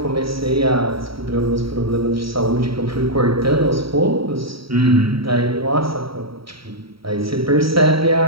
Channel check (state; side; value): late; left; 0.75 ms